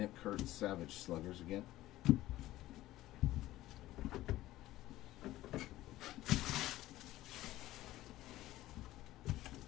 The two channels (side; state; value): right; quieter; 15.8 dB